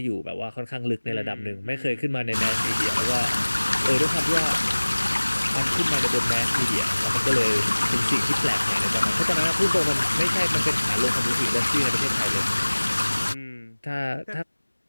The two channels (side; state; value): both; inverted; correlation -1.00